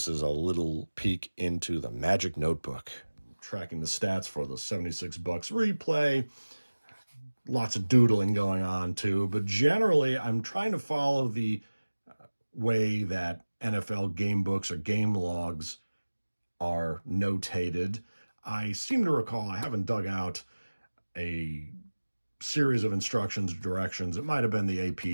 is a little peek into the magic notebook. Tracking the stats for the 76 Bucks replay. Lots of doodling going on too, but generally I'm trying to follow the way that NFL game books or game logs are notated. I seem to recall, I haven't dug out a series of instructions, directions. It might have been the AP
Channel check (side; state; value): both; inverted; correlation -1.00